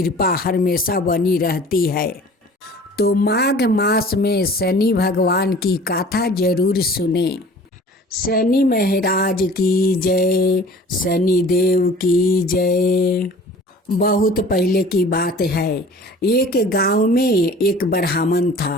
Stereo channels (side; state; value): both; normal; correlation 0.46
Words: हमेशा बनी रहती है। तो माघ मास में शनि भगवान की कथा जरूर सुने। शनि महाराज की जय, शनि देव की जय। बहुत पहले की बात है, एक गांव में एक ब्राह्मण